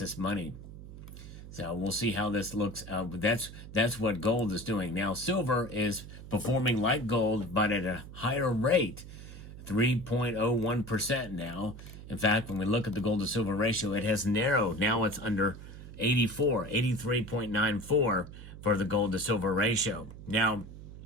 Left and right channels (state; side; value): noise; right; hum, 14 dB below the sound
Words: Money. So we'll see how this looks. That's what gold is doing. Now, silver is performing like gold, but at a higher rate, 3.01% now. In fact, when we look at the gold to silver ratio, it has narrowed. Now it's under 83.94 for the gold to silver ratio. Now,